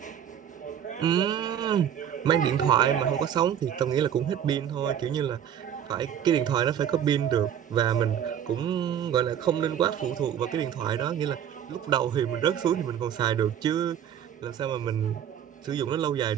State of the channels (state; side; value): quieter; left; 9.3 dB